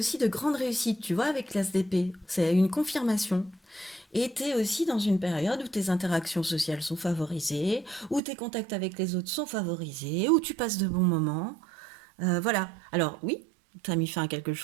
de grande réussite, tu vois, avec l'ASDP. C'est une confirmation. Et tu es aussi dans une période où tes interactions sociales sont favorisées, où tes contacts avec les autres sont favorisés, où tu passes de bons moments. Voilà. Alors oui, tu as mis fin à quelque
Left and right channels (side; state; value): left; drops out; at 8.2 s